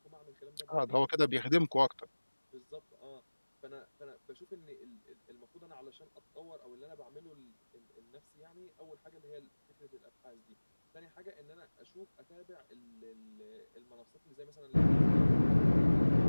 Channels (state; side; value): inverted; both; correlation -1.00